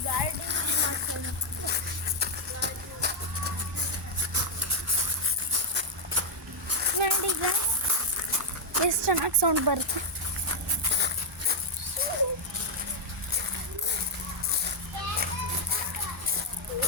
ನೋಡಿ ಈಗ ಎಷ್ಟು ಚೆನ್ನಾಗಿ ಸೌಂಡ್ ಬರುತ್ತೆ.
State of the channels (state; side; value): normal; both; correlation -0.01